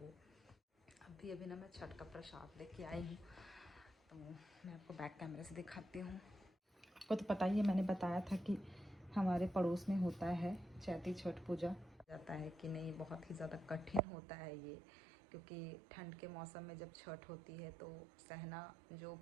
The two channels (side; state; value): left; drops out; at 14.0 s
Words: अभी अभी ना मैं छठ का प्रसाद लेके आई हूँ, तो मैं आपको बैक कैमरे से दिखाती हूँ। आपको तो पता ही है, मैंने बताया था कि हमारे पड़ोस में होता है चैती छठ पूजा। जाता है कि नहीं, बहुत ही ज़्यादा कठिन होता है ये, क्योंकि ठंड के मौसम में जब छठ होती है तो सहना जो